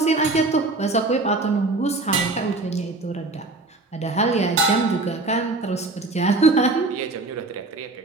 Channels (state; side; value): quieter; left; 3.3 dB